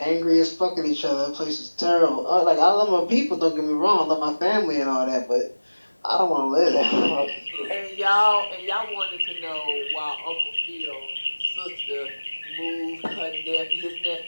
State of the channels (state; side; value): inverted; both; correlation -1.00